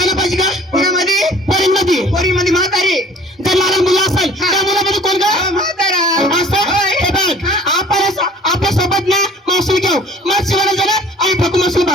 पाहिजे का कोणामध्ये पोरींमध्ये म्हातारी जर लहान मुलं असेल त्या मुलामध्ये कोण का म्हातारा असं हे बघ आपण आपल्या सोबत ना मावशी घेऊ मग शिवायला जाणार आणि ठकू मावशी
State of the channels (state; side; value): normal; both; correlation 0.50